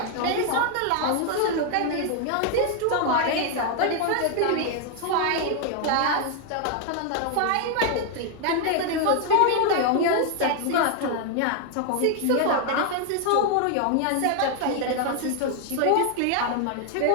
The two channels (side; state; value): both; different; correlation 0.00